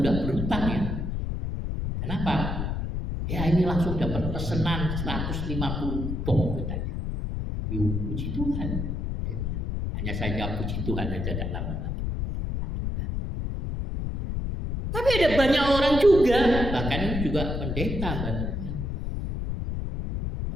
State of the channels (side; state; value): left; noise; rumble, 2 dB below the sound